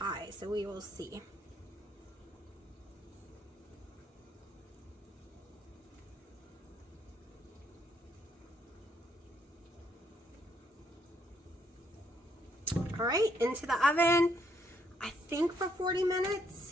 so we will see. All right, into the oven, I think for 40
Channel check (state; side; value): normal; both; correlation 0.71